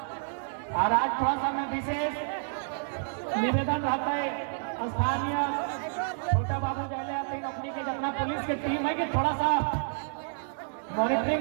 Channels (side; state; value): left; silent; digital silence